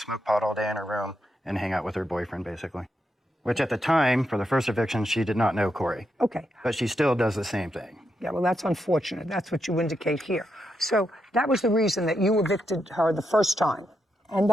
pot all day in her room and hang out with her boyfriend, basically. Which at the time, for the first eviction, she did not know Corey. Okay. But she still does the same thing. Yeah, well, that's unfortunate. That's what you indicate here. So that was the reason that you evicted her the first time. And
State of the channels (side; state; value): both; normal; correlation 0.83